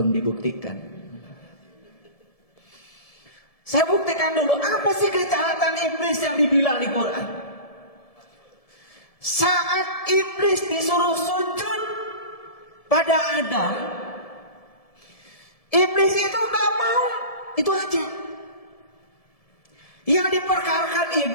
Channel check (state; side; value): late; right; 1.7 ms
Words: dibuktikan. Saya buktikan dulu apa sih kejahatan iblis yang dibilang di Quran. Saat iblis disuruh sujud pada Adam, iblis itu gak mau. Itu aja. Yang diperkarakan